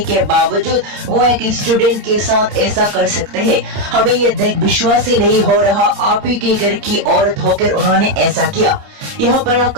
बावजूद वो एक स्टूडेंट के साथ ऐसा कर सकते हैं। हमें ये देख विश्वास ही नहीं हो रहा, आप ही के घर की औरत होकर उन्होंने ऐसा किया। यहाँ पर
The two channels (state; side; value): late; left; 30 ms